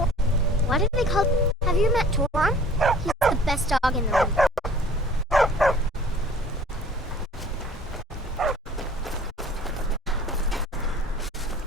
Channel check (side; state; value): both; normal; correlation 0.50